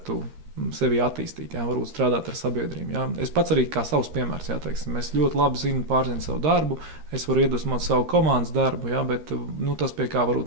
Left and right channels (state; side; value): late; left; 13 ms